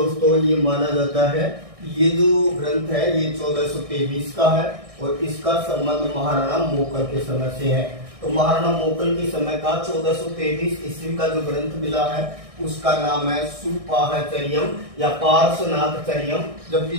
ये माना जाता है ये जो ग्रंथ है ये 1423 का है और इसका संबंध महाराणा मोकल के समय से है। तो महाराणा मोकल के समय का 1423 ईस्वी का जो ग्रंथ मिला है उसका नाम है सुपाहचर्यम या पार्श्वनाथचर्यम। जबकि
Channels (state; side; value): late; left; 1.6 ms